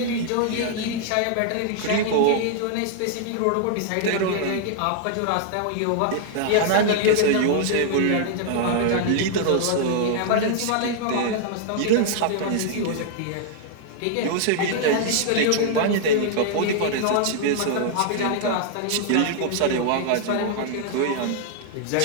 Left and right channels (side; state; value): both; different; correlation -0.01